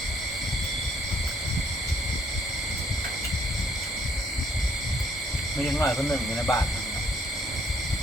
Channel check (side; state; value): both; normal; correlation 0.66